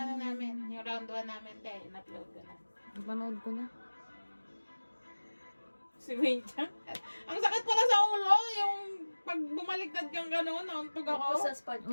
namin. Yung round 1 namin, te. In-upload ko na. Ipanood ko na. Si Wayne Chang. Ang sakit pala sa ulo. Yung pag bumaliktad kang gano'n, nauntog ako. Sa spot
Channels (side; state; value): both; inverted; correlation -1.00